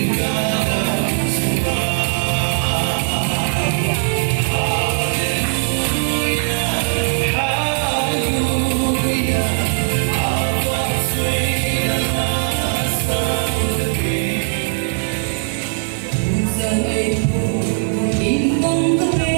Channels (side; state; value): left; silent; 58 dB below the other